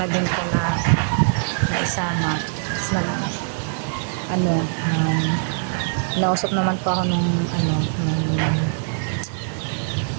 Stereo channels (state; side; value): silent; left; 64 dB below the other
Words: din po naisama. Tapos nausap naman po ako nung